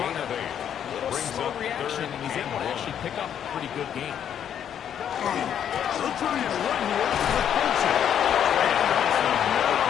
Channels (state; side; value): quieter; right; 9.2 dB